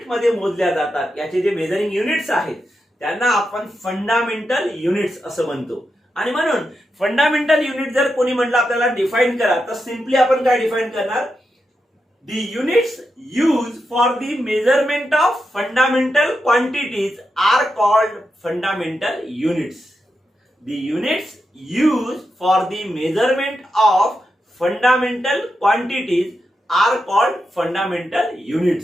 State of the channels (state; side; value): normal; both; correlation 0.87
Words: मध्ये मोजल्या जातात, याचे जे मेजरिंग युनिट्स आहेत त्यांना आपण फंडामेंटल युनिट्स असं म्हणतो. आणि म्हणून फंडामेंटल युनिट जर कोणी म्हटलं आपल्याला डिफाइन करा तर सिंपली आपण काय डिफाइन करणार, the units use for the measurement of fundamental quantities are called fundamental units. The units used for the measurement of fundamental quantities are called fundamental